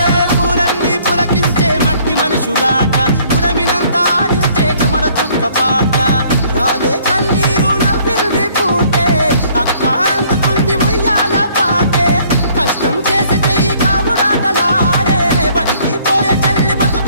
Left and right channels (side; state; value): both; inverted; correlation -0.60